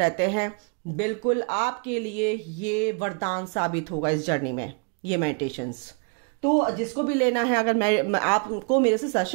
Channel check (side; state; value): left; quieter; 37.9 dB